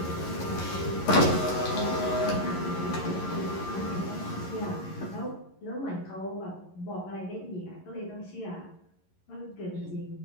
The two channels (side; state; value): right; late; 11 ms